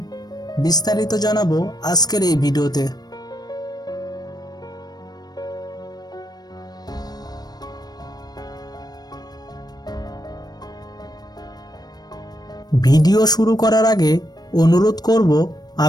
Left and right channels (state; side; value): late; right; 0.19 ms